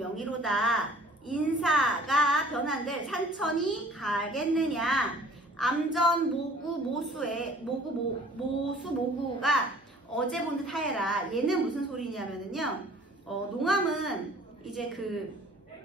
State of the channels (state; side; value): normal; both; correlation 0.51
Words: 인사가 변한들 산천이 가겠느냐. 암전 모구 모수의 모수 모구가 어제 본 듯 하여라. 얘는 무슨 소리냐면은요, 농암은 이제 그